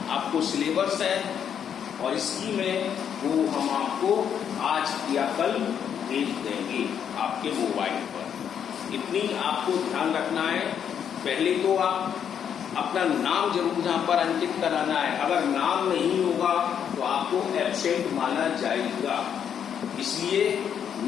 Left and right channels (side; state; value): right; quieter; 8.4 dB